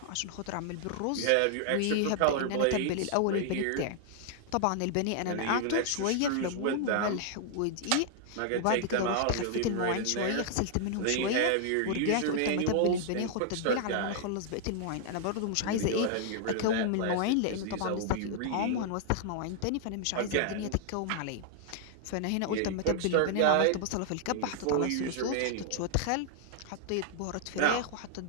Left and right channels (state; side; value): different; both; correlation -0.01